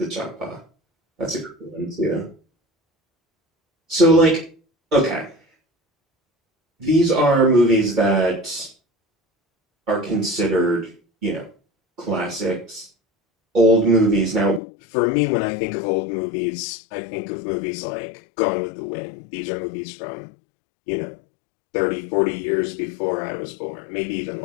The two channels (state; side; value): drops out; right; at 14.6 s